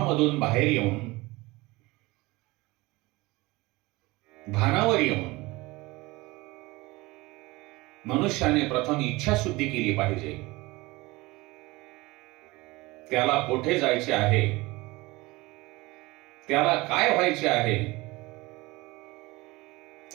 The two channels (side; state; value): left; quieter; 21.9 dB